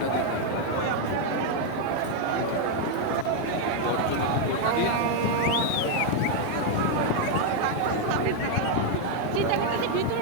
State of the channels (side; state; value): both; different; correlation 0.00